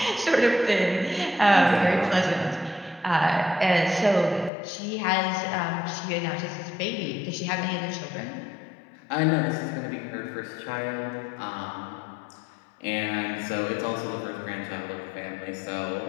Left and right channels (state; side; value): drops out; right; at 4.5 s